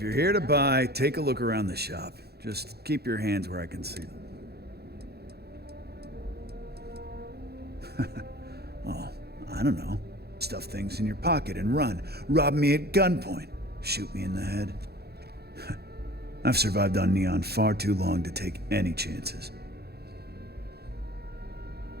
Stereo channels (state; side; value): late; left; 0.47 ms